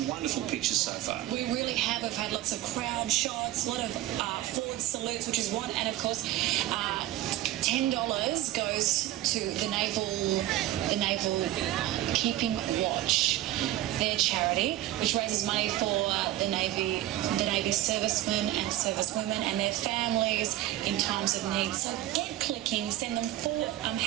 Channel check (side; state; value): left; quieter; 14.5 dB